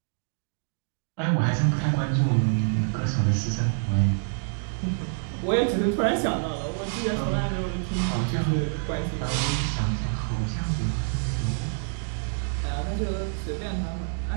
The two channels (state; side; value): silent; left; digital silence